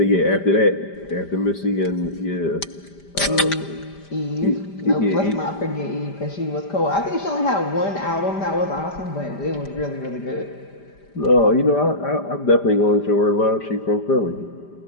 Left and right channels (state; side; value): late; right; 5.0 ms